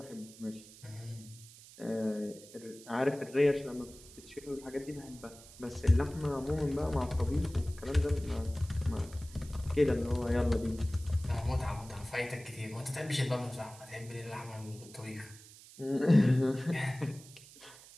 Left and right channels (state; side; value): noise; right; hiss, 19 dB below the sound